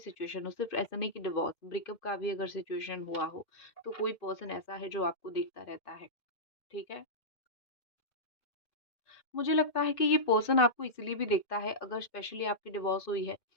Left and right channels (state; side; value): late; right; 2.1 ms